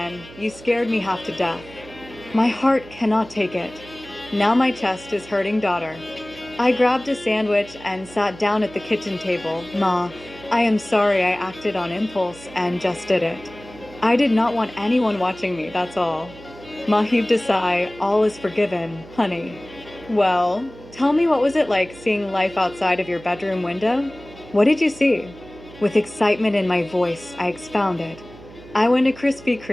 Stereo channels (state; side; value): noise; right; hum, 19 dB below the sound